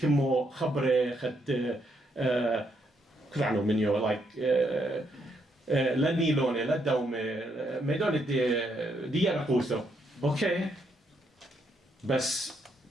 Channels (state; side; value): normal; both; correlation 0.75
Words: خبرة خد كلعنو منيو like لا نيلوني لا دومي ميدون دي رقوسو اوكي بس